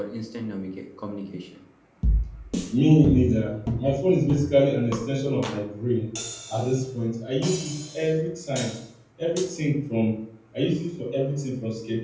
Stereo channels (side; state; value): both; identical; correlation 1.00